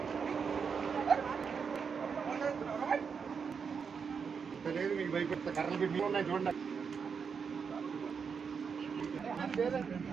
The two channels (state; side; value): quieter; left; 6.1 dB